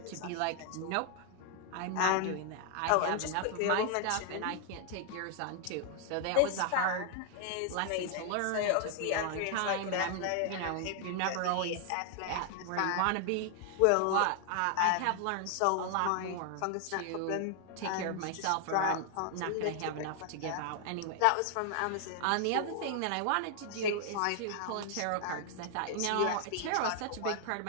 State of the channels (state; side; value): different; both; correlation 0.00